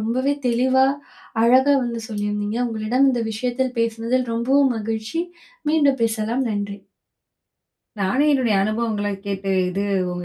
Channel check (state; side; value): identical; both; correlation 1.00